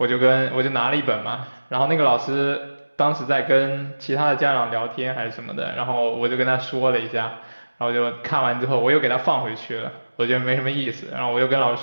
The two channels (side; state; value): both; inverted; correlation -1.00